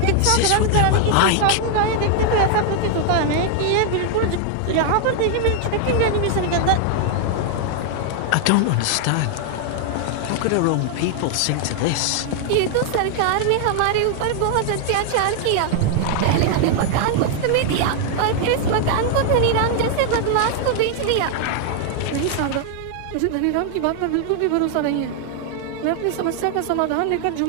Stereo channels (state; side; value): different; both; correlation 0.00